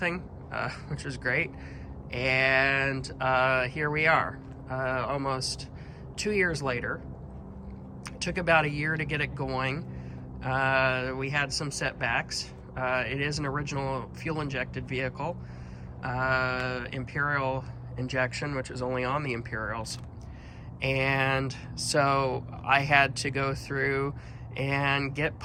which was great. And here we are, almost 2 years later. It took about a year to get it going. We had some setbacks. It is an original fuel-injected vehicle, Imperial injection, which is only on the Imperials. And so I had to go through and get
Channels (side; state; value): both; identical; correlation 1.00